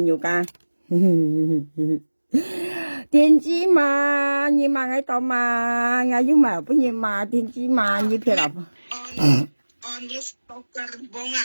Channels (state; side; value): inverted; both; correlation -1.00